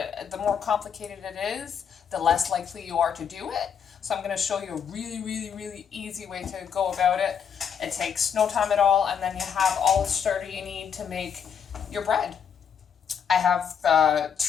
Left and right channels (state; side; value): quieter; right; 7.5 dB